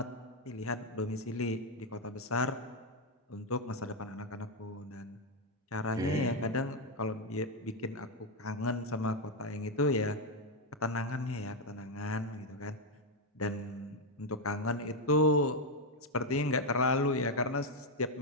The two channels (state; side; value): normal; both; correlation 0.04